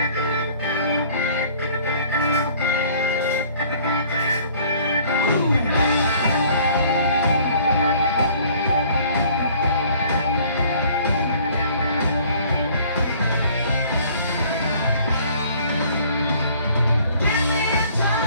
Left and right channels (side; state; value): both; inverted; correlation -0.55